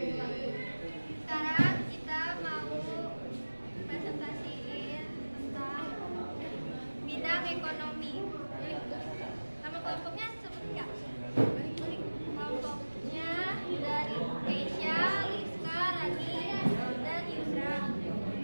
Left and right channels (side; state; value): both; inverted; correlation -1.00